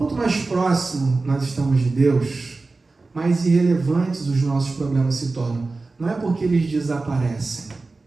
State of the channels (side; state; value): left; quieter; 3.6 dB